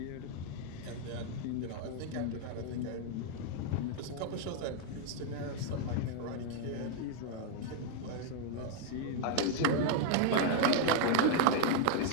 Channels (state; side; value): different; both; correlation 0.00